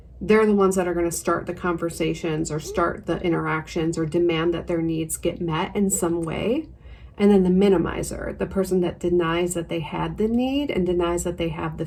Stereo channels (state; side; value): identical; both; correlation 1.00